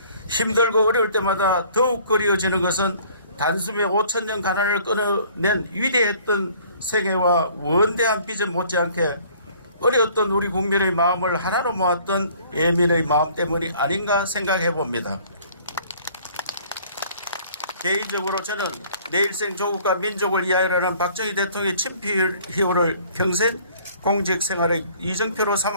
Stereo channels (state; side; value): inverted; both; correlation -0.55